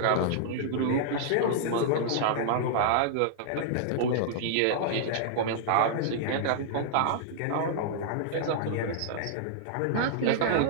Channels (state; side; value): different; both; correlation -0.01